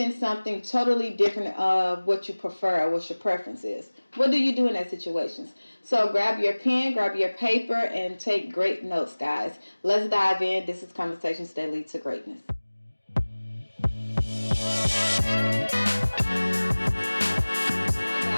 something totally different of what you prefer or what your preference is? What do you do in that situations? So grab your pen, grab your paper, and take great notes, guys. Let's dive in. This is Conversations That Lead to Greatness.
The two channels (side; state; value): both; inverted; correlation -1.00